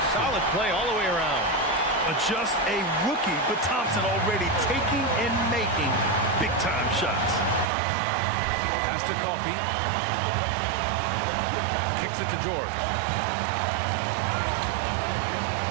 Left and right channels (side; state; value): left; drops out; at 7.7 s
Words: Solid play all the way around. Just a rookie, but Thompson already taking and making big-time shots. Pass to Coffey. Kicks it to George.